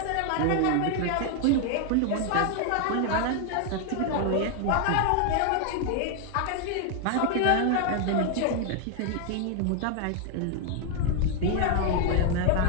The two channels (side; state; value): both; different; correlation 0.00